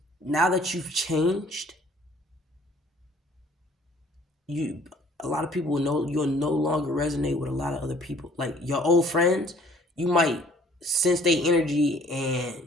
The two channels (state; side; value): normal; both; correlation 0.56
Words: now that you've changed, you a lot of people will know you'll no longer resonate with a lot of other people. Like your old friends, you might sense their energy, and